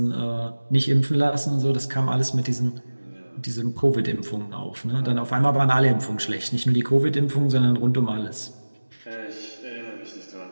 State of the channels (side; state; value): both; inverted; correlation -1.00